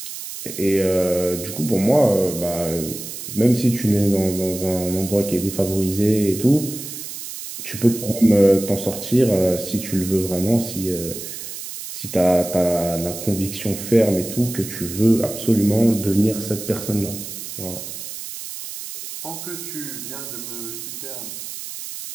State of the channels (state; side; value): noise; right; hiss, 9 dB below the sound